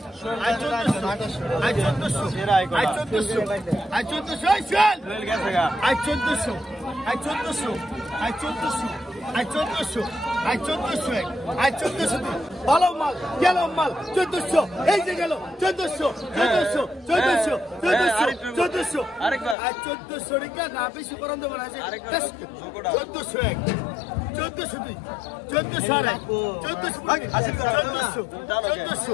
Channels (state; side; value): drops out; right; at 19.6 s